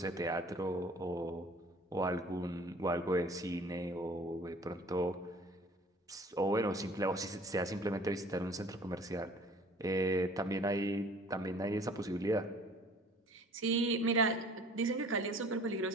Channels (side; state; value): both; normal; correlation 0.50